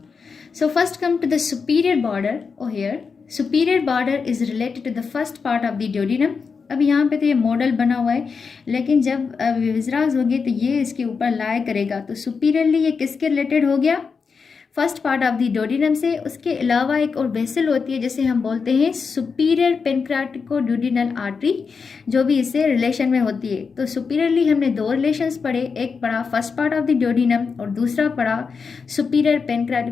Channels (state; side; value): quieter; right; 5.3 dB